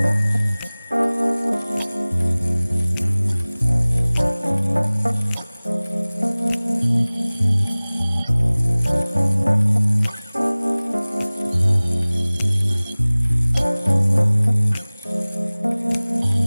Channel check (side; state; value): both; inverted; correlation -0.99